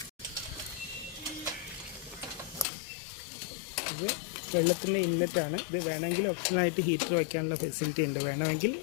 ഇത് വെള്ളത്തിൻ്റെ ഇൻലെറ്റാണ്. ഇത് വേണമെങ്കിൽ ഓപ്ഷനായിട്ട് ഹീറ്റർ വയ്ക്കാനുള്ള ഫെസിലിറ്റി ഉണ്ട്, വേണമെങ്കിൽ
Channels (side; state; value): right; drops out; at 2.7 s